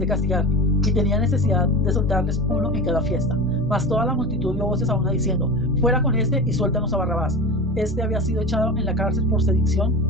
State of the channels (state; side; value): noise; left; rumble, 16 dB below the sound